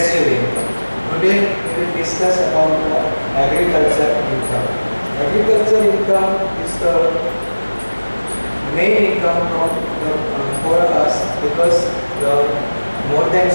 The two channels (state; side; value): inverted; both; correlation -1.00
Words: income. Today we will discuss about the agriculture income. Agriculture income is the main income for us, because more than